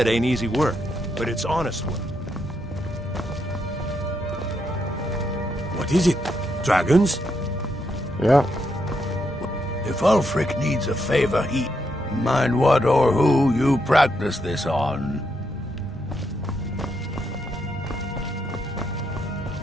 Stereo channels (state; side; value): normal; both; correlation 0.79